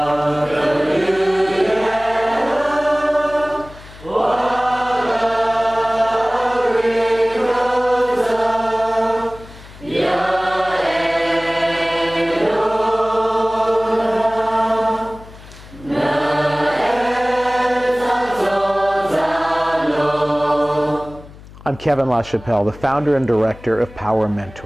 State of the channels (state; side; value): noise; left; hum, 19 dB below the sound